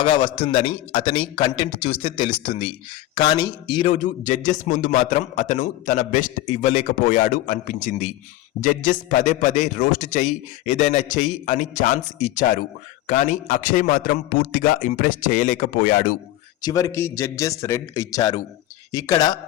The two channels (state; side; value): quieter; right; 15.1 dB